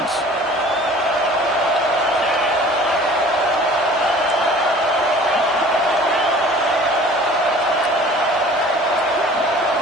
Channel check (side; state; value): both; normal; correlation 0.47